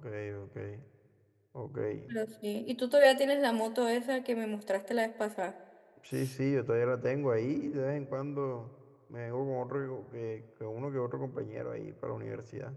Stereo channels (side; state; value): both; identical; correlation 1.00